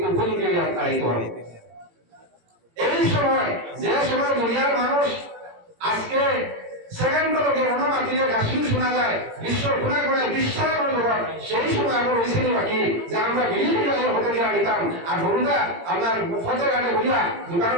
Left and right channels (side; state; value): left; late; 18 ms